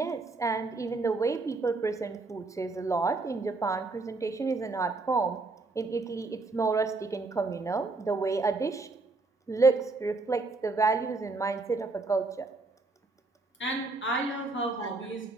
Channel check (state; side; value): quieter; left; 3.6 dB